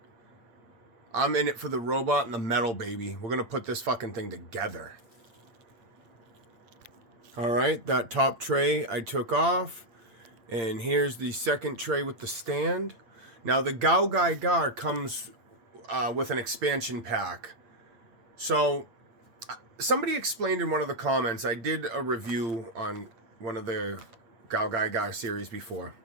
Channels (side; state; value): left; late; 8.8 ms